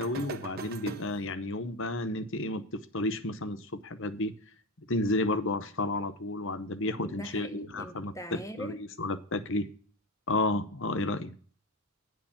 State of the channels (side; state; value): both; normal; correlation 0.19